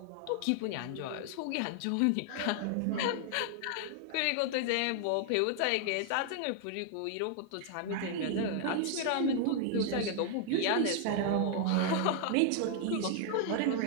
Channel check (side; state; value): both; different; correlation 0.00